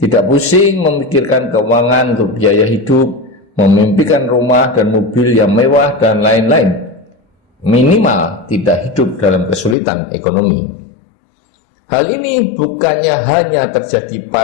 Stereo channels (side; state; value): right; drops out; at 9.8 s